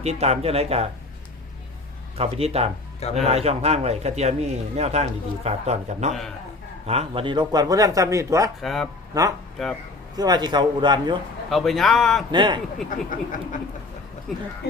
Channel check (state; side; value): quieter; right; 3.2 dB